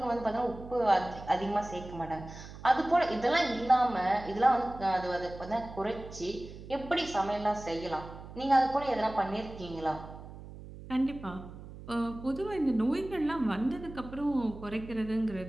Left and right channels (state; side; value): noise; right; hum, 14 dB below the sound